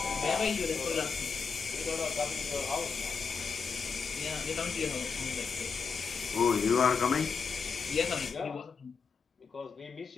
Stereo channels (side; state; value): right; quieter; 5.5 dB